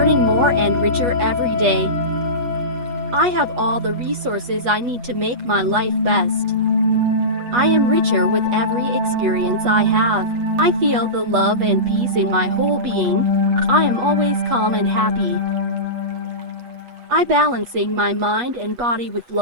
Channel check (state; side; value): late; left; 8.2 ms